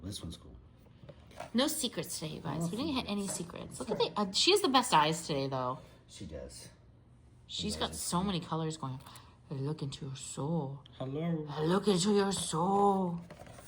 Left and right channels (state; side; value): identical; both; correlation 1.00